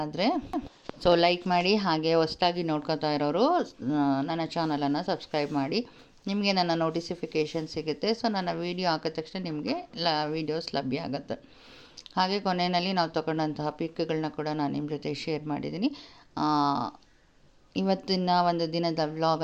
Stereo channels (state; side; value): identical; both; correlation 1.00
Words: ಆದರೆ ಲೈಕ್ ಮಾಡಿ, ಹಾಗೆ ಹೊಸದಾಗಿ ನೋಡ್ಕೊತಾ ಇರೋರು ನನ್ನ ಚಾನಲನ್ನು ಸಬ್ಸ್ಕ್ರೈಬ್ ಮಾಡಿ. ನಿಮಗೆ ನನ್ನ ನೋಟಿಫಿಕೇಷನ್ ಸಿಗುತ್ತೆ. ಸೊ ನನ್ನ ವೀಡಿಯೋ ಹಾಕಿದ ತಕ್ಷಣ ನಿಮಗೆ ವೀಡಿಯೋಸ್ ಲಭ್ಯ ಆಗುತ್ತೆ. ಹಾಗೆ ಕೊನೆಯಲ್ಲಿ ನಾವು ತಗೊಂಡಂತಹ ಪಿಕ್ಗಳನ್ನ ಕೂಡ ನಾನು ನಿಮ್ಮ ಜೊತೆ ಶೇರ್ ಮಾಡಿದ್ದೀನಿ. ಇವತ್ತಿನ ಒಂದು ದಿನದ